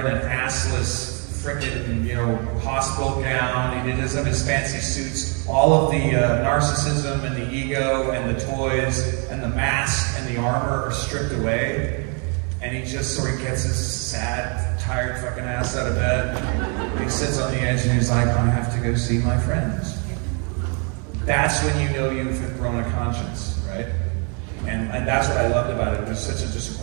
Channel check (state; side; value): quieter; left; 36.7 dB